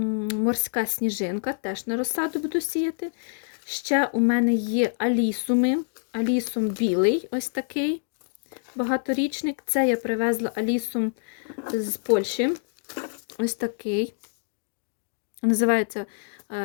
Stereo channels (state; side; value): silent; right; digital silence